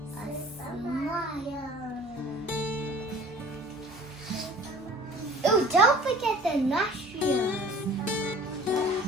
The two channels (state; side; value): normal; both; correlation 0.46